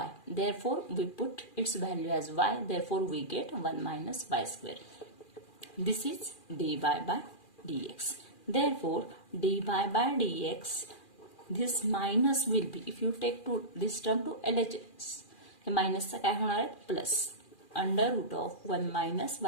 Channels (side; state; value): right; late; 2.4 ms